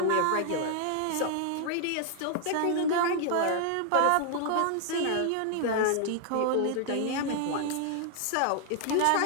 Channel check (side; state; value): both; different; correlation 0.00